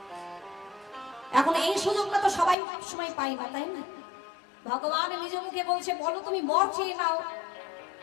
এখন এই সুযোগটা তো সবাই সময় পাই না, তাই না? ভগবান নিজ মুখে বলছে বলো তুমি বর চেয়ে নাও,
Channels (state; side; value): drops out; right; at 2.6 s